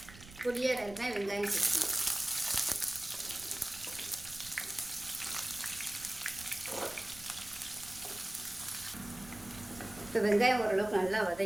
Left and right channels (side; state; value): right; noise; rumble, 18 dB below the sound